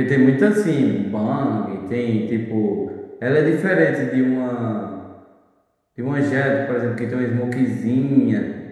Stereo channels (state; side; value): identical; both; correlation 1.00